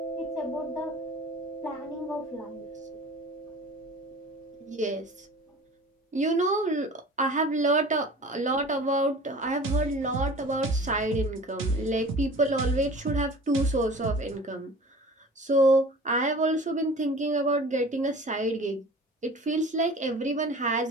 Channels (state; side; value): normal; both; correlation 0.42